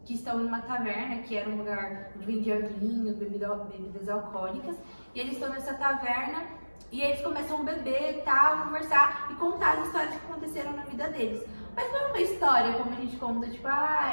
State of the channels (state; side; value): inverted; both; correlation -1.00